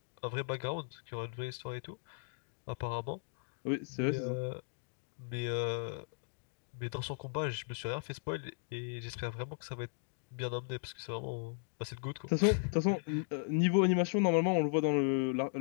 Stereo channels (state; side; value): silent; right; digital silence